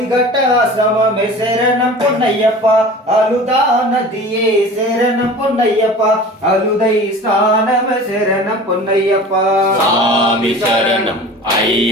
ஆசிரமமே சரணம் பொன்னையப்பா அழுதா நதியே சரணம் பொன்னையப்பா அழுதை ஸ்நானமே சரணம் பொன்னையப்பா சாமி சரணம்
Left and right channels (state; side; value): normal; both; correlation 0.39